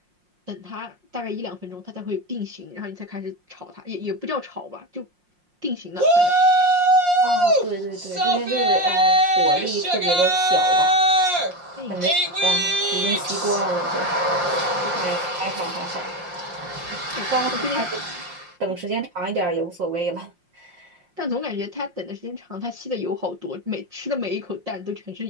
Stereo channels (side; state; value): left; late; 5.6 ms